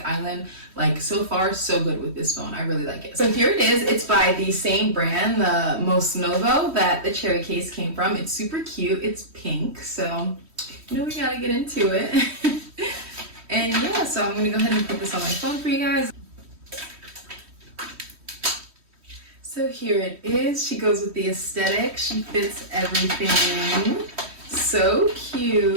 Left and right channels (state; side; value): late; left; 3.1 ms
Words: island. Like, so far, so good with this phone. I really like it. So here it is. It's by the same brand, the Most Novo, that the cherry case came from. It's super cute. It's pink, so you know we gotta get into it. And yeah, so I'm gonna go ahead and put this on my phone for you guys. So here it is. She goes with the aesthetic. She fits everything. So